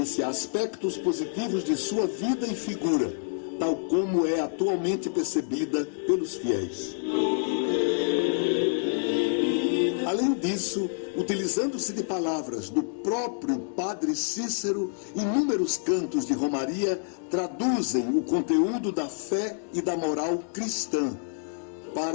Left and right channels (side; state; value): right; silent; digital silence